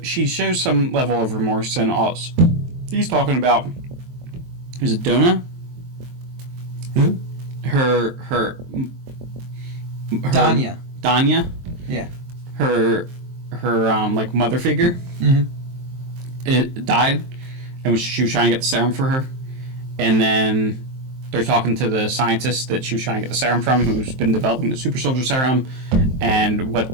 some level of remorse, and all he's talking about. Is it Donna? Who? Her Danya. Danya? Yeah. Her like mother figure. Mm-hmm. It died, and she was trying to get the serum for her, and then they're talking to the scientist that she was trying to get the serum from, who's been developing the super soldier serum, and what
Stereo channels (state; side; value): late; left; 23 ms